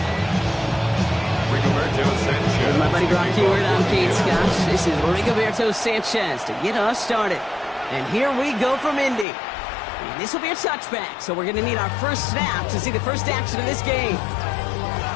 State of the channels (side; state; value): right; drops out; at 9.2 s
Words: With my buddy Brock Heward, I'm Kate Scott. This is Rigoberto Sanchez to get us started. And here we go from Indy. And this will be a touchback, so we're going to need our first snap to see the first action of this game.